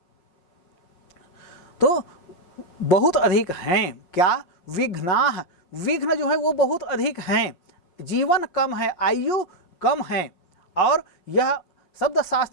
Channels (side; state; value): right; late; 5.6 ms